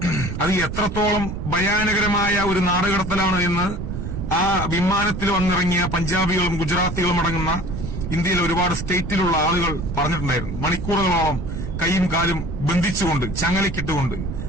അത് എത്രത്തോളം ഭയാനകരമായ ഒരു നാടുകടത്തലാണ് എന്ന് ആ വിമാനത്തിൽ വന്നിറങ്ങിയ പഞ്ചാബികളും ഗുജറാത്തികളും അടങ്ങുന്ന ഇന്ത്യയിലെ ഒരുപാട് സ്റ്റേറ്റിലുള്ള ആളുകൾ പറഞ്ഞിട്ടുണ്ടായിരുന്നു. മണിക്കൂറുകളോളം കൈയും കാലും ബന്ധിച്ചുകൊണ്ട് ചങ്ങലക്കിട്ടുകൊണ്ട്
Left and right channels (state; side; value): noise; right; rumble, 5 dB below the sound